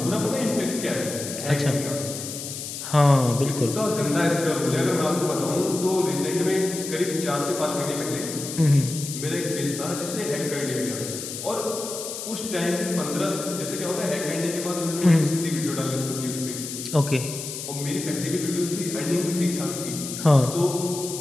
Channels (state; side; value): noise; left; hiss, 7 dB below the sound